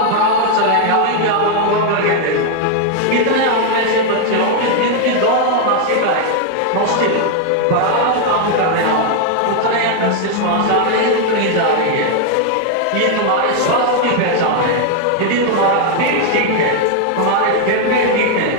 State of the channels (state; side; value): different; both; correlation 0.00